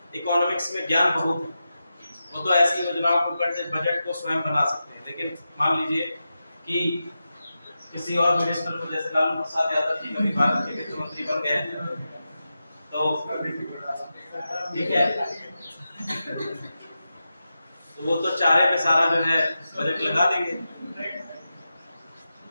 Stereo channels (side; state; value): both; inverted; correlation -0.91